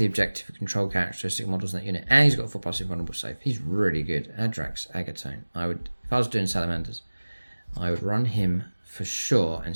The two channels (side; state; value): both; inverted; correlation -1.00